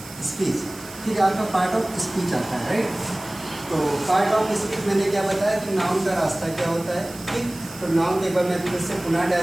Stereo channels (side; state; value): right; noise; hiss, 17 dB below the sound